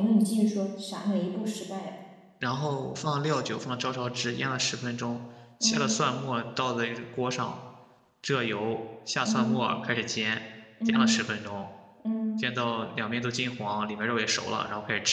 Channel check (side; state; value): both; identical; correlation 1.00